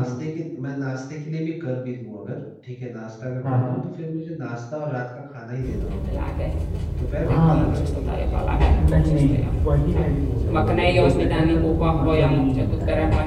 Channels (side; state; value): both; identical; correlation 1.00